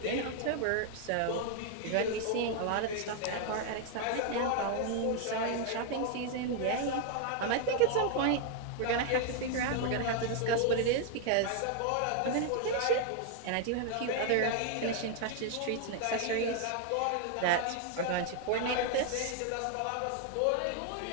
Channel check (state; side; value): different; both; correlation 0.00